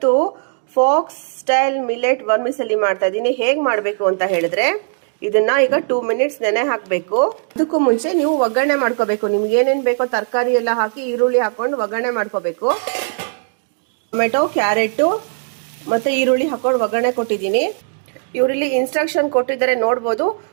fox style millet ವರ್ಮಿಸೆಲಿ ಮಾಡ್ತಾ ಇದ್ದೀನಿ. ಹೇಗೆ ಮಾಡಬೇಕು ಅಂತ ಹೇಳಿದ್ರೆ, ಇದನ್ನ ಈಗ 2 ಮಿನಿಟ್ಸ್ ನೆನೆ ಹಾಕಬೇಕು. ಅದಕ್ಕೂ ಮುಂಚೆ ನೀವು ಒಗ್ಗರಣೆ ಮಾಡ್ಕೋಬೇಕು. ನಿಮ್ಗೆ ಏನೇನು ಬೇಕೋ ತರಕಾರಿ ಎಲ್ಲ ಹಾಕಿ ಈರುಳ್ಳಿ ಹಾಕೊಂಡು ಒಗ್ಗರಣೆ ಮಾಡ್ಕೋಬೇಕು. ಟೊಮೆಟೊ, ಕ್ಯಾರೆಟ್ ಮತ್ತೆ ಈರುಳ್ಳಿ ಹಾಕೊಂಡು ಒಗ್ಗರಣೆ ಕೊಟ್ಟಿದ್ದೀನಿ. ಇವರಲ್ಲಿ ಇನ್ಸ್ಟ್ರಕ್ಷನ್ ಕೊಟ್ಟಿದ್ದಾರೆ ನೋಡ್ಬೋದು.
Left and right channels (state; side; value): silent; left; digital silence